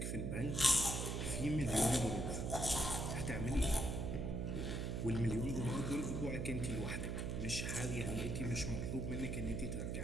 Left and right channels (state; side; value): noise; right; hum, 1 dB below the sound